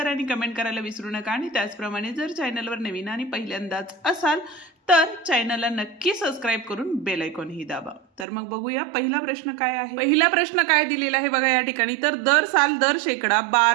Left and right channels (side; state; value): left; drops out; at 8.2 s